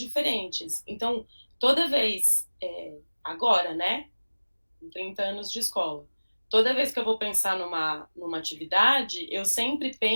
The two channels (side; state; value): both; inverted; correlation -1.00